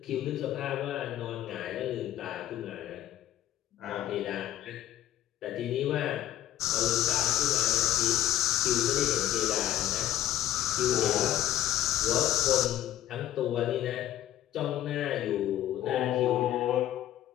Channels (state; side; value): quieter; right; 12.9 dB